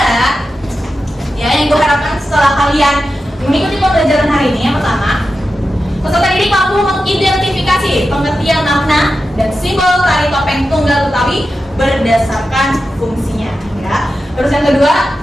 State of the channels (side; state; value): both; normal; correlation 0.91